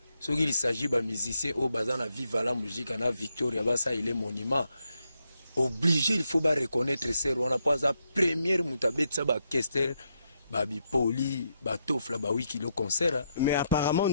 soki il s'agit ba musicien au bazana viva la musique na Victoria basa il est monument obligé il faut ba reconnaître ser wana pas la première mutabetsa ba kester ba bipoli ba tofla ba wiki le concert mais apparemment on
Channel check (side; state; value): both; inverted; correlation -0.81